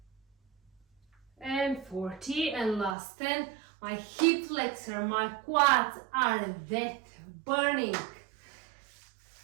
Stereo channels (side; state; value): left; drops out; at 3.0 s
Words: and 40, and last 10. My hip flexor, my quads are that burning.